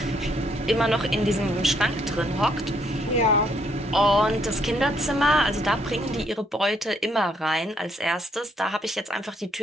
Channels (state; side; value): normal; both; correlation 0.70